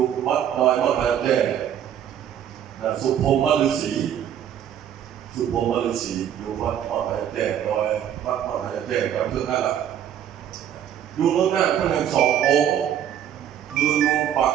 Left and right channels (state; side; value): quieter; left; 9.9 dB